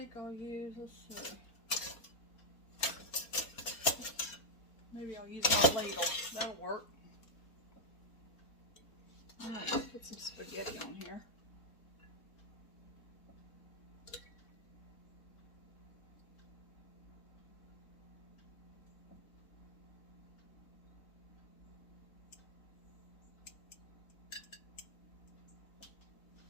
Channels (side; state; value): right; late; 4.4 ms